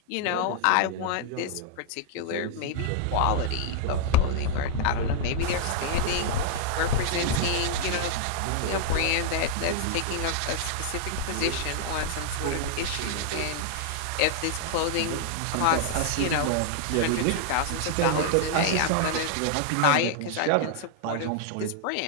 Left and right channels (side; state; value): both; different; correlation -0.01